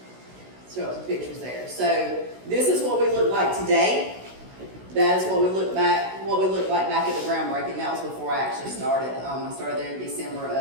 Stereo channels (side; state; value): left; late; 16 ms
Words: show some pictures there. So this is what we look like today. That is what we looked like back at the groundbreaking. That was before I actually started. I started there in December